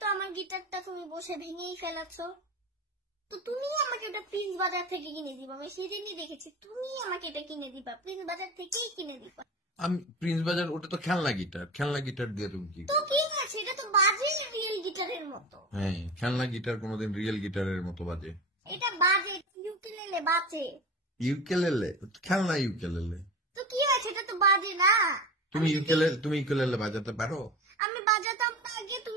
আমার গিটারটা তুমি বসে ভেঙেই ফেলাচ্ছো, তো তুমি আমাকে ওটা প্রিন্স বাজার থেকে কিনে দিবা। আমি সেদিনই দেখেছি তুমি আমাকে এটা কিনে দিবা, প্রিন্স বাজার থেকেই কিনে দিবা। আমি প্রিন্স বাজার, ওটা তো খেলনা গিটার। খেলনা গিটার দিয়ে তুমি কি? তো কি আছে, এটা তো বাজে রিয়েল গিটারের মতো। হ্যাঁ, খেলনা গিটার কোনোদিন রিয়েল গিটারের মতো বাজে? এটা বাজে, ইউকেলেলে বাজে। ইউকেলেলে? খেলনা ইউকেলেলে। তো কি আছে, এটা তো বাজে না। তুমি ইউকেলেলে বাজাতে পারো? আমি বাজাতাম না আগে।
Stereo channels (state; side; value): normal; both; correlation 0.30